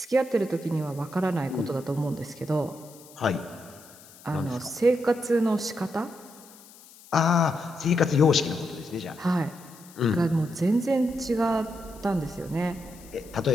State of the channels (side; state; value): left; noise; hiss, 22 dB below the sound